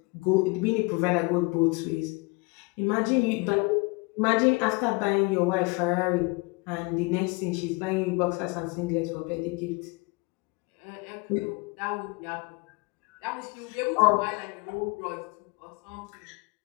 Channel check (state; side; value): quieter; right; 27.2 dB